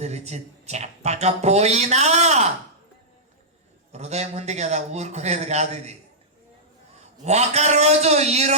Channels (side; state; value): both; normal; correlation -0.13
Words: చెప్పకపోయినా, హృదయం ఉంది కదా, ఊరుకునేది కాదు ఇది. ఒకరోజు, ఈ